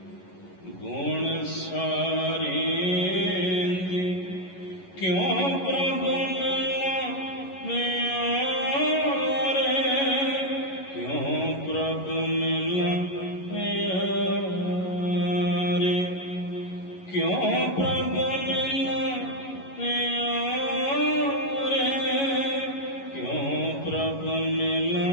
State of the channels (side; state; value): right; late; 11 ms